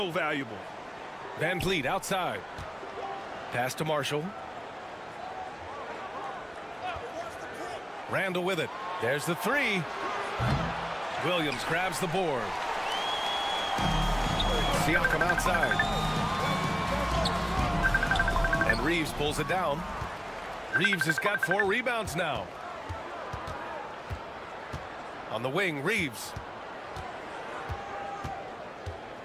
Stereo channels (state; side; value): identical; both; correlation 1.00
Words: valuable. Van Vliet outside. Pass to Marshall. Randall with it. There's the three. Williams grabs the board. Siakam outside. And Reeves pulls it down. Reeves has got 4 rebounds now. On the wing, Reeves.